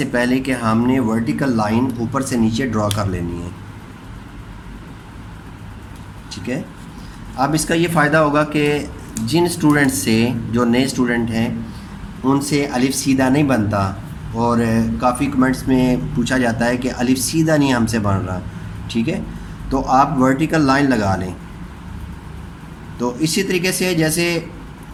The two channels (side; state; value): both; identical; correlation 1.00